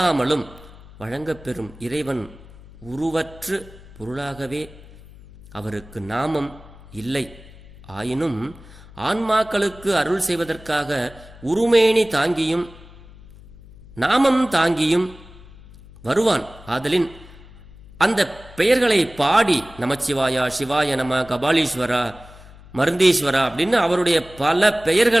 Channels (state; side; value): noise; left; hum, 21 dB below the sound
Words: வழங்கப்பெறும் இறைவன் உருவற்று பொருளாகவே அவருக்கு நாமம் இல்லை. ஆயினும் ஆன்மாக்களுக்கு அருள் செய்வதற்காக உருமேனி தாங்கியும் நாமம் தாங்கியும் வருவான். ஆதலின் அந்த பெயர்களை பாடி நமச்சிவாயா, சிவாய நம, கபாலீஸ்வரா, மருந்தீஸ்வரா அப்படின்னு அவருடைய பல